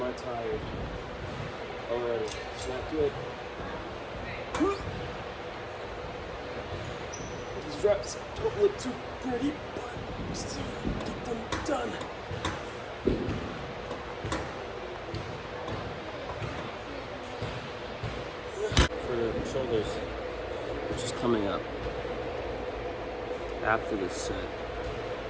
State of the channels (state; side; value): identical; both; correlation 1.00